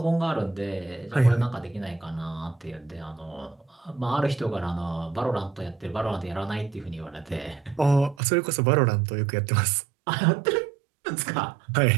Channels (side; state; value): left; drops out; at 8.2 s